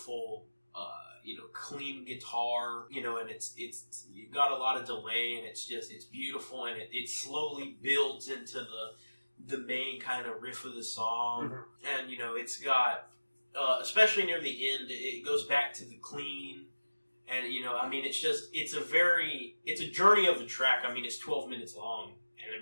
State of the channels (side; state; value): both; inverted; correlation -1.00